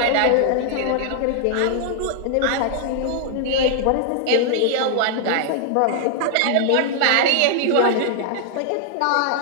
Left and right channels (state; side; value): different; both; correlation -0.01